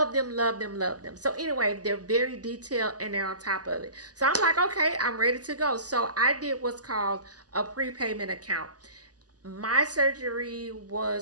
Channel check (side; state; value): left; late; 0.68 ms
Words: them, love them, love them. So anyway, they're very detailed and they're on top of it. So I'm like, okay, I'm ready to go. So I did what's called a prepayment account. My surgery